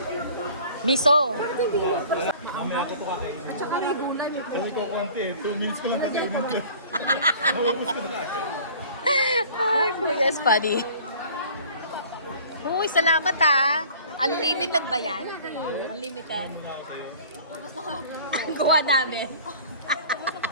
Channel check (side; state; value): both; inverted; correlation -0.47